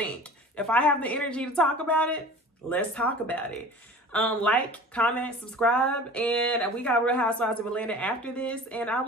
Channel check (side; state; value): both; normal; correlation 0.41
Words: If I have the energy to talk about it, let's talk about it. Like, comment, subscribe, and we got Real Housewives of Atlanta after this, and I